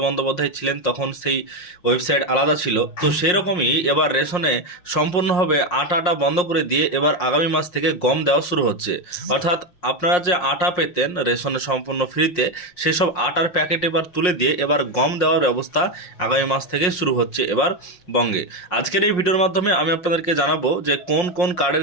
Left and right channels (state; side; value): late; right; 5.6 ms